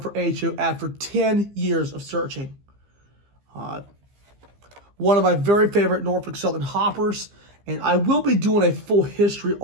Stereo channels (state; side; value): late; left; 15 ms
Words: for HO after 10 years of searching. One of my very favorite Norfolk Southern hoppers, and I will be doing a full history